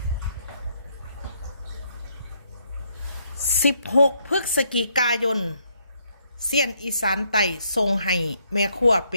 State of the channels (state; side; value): inverted; both; correlation -0.72